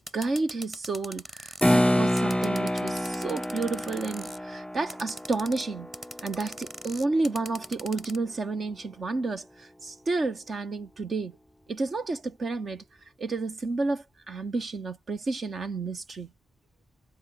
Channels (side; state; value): both; normal; correlation 0.91